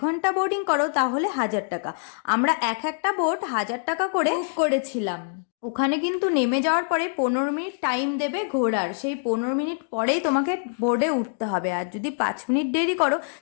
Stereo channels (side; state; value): right; silent; digital silence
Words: ঘন্টা বোর্ডিং করো তাহলে 1000 টাকা। আমরা একটা বোট 1000 টাকা করে বুক করেছিলাম। ওখানে কিন্তু নেমে যাওয়ার পরে 15 মিনিট টাইম দেবে ঘোরার, সেই 15 মিনিট পরেই তোমাকে বোর্ডে উঠতে হবে, আর যদি 5 মিনিট দেরি করো